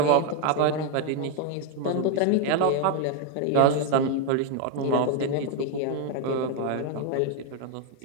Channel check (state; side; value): different; both; correlation 0.01